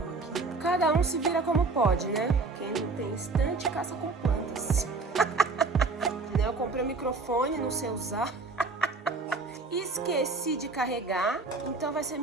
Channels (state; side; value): quieter; left; 3.9 dB